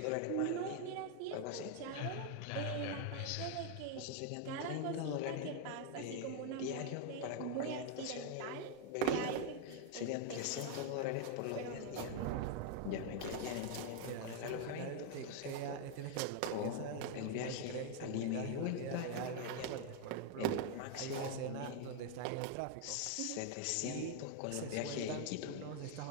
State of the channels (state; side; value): different; both; correlation 0.00